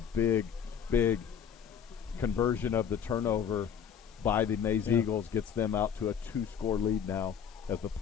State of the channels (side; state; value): right; quieter; 7.9 dB